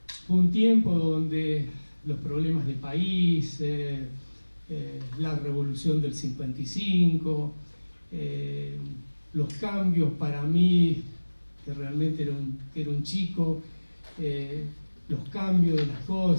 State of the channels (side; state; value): both; inverted; correlation -1.00